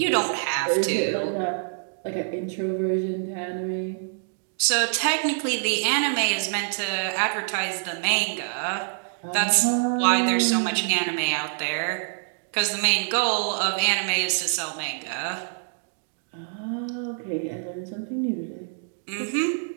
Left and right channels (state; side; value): silent; left; digital silence